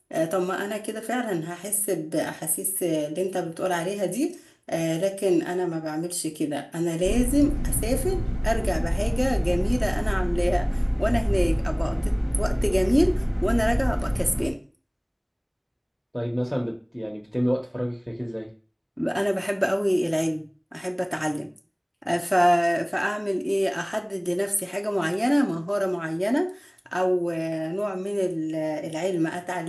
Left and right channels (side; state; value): both; identical; correlation 1.00